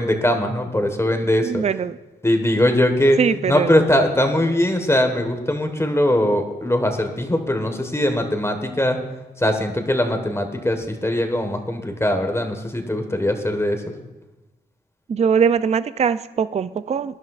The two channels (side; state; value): both; normal; correlation 0.75